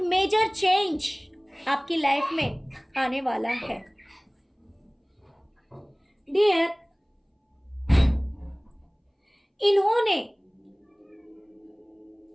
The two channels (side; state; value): both; identical; correlation 1.00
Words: मेजर चेंज आपकी लाइफ में आने वाला है। डियर, इन्होंने